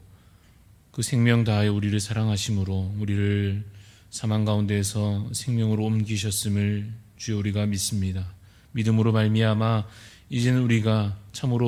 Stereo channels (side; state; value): both; identical; correlation 1.00